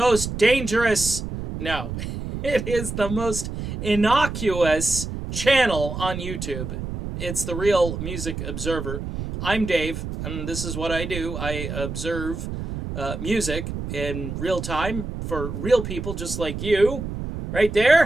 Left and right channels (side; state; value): right; noise; rumble, 6 dB below the sound